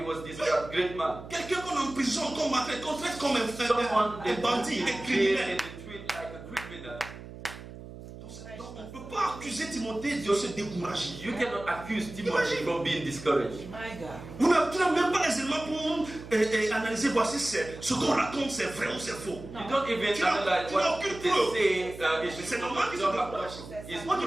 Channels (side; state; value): right; noise; hum, 14 dB below the sound